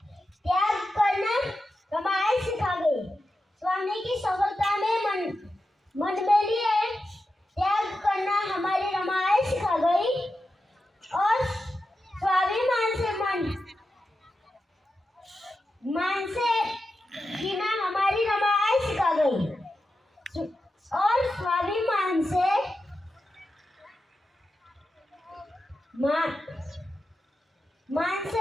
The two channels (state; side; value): normal; both; correlation 0.90